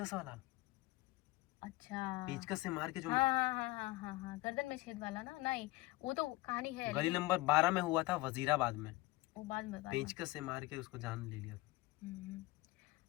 वाला, अच्छा पेचकस से मार के जो हाँ हाँ हाँ हाँ हाँ हाँ, गर्दन में छेद वाला ना, नहीं वो तो कहानी है गली लेकिन नंबर 12 में हुआ था, वजीराबाद में। वो बाद में पेचकस से मार के उसको जान ले लिया था।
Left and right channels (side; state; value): right; quieter; 20.0 dB